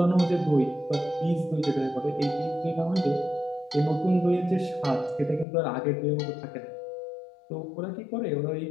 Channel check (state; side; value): drops out; right; at 5.5 s